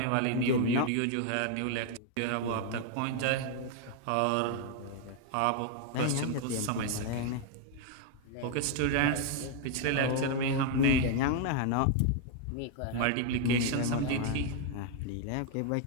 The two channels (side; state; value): both; different; correlation 0.00